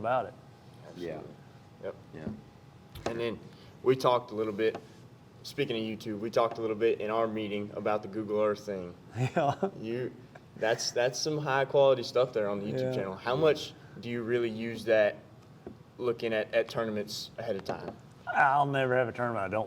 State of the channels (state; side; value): identical; both; correlation 1.00